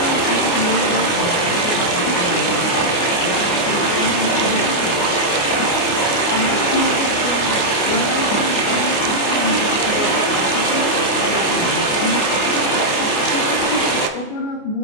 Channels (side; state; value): right; late; 29 ms